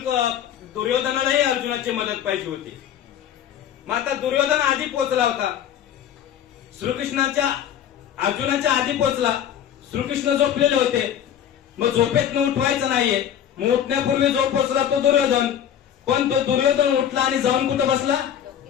दुर्योधनालाही अर्जुनाची मदत पाहिजे होती. मग आता दुर्योधन आधी पोहोचला होता, श्रीकृष्णाच्या अर्जुनाच्या आधी पोहोचला. श्रीकृष्ण झोपलेले होते, मग झोपेत उठवायचं नाहीये. मग उठण्यापूर्वी जो पोहोचला तो दुर्योधन. पण तो दुर्योधन उठला आणि जाऊन कुठं बसला?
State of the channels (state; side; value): quieter; right; 9.8 dB